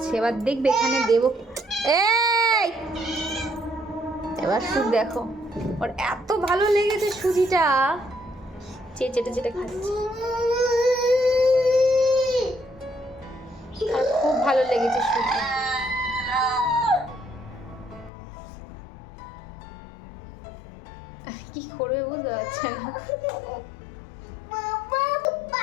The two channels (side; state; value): right; drops out; at 18.1 s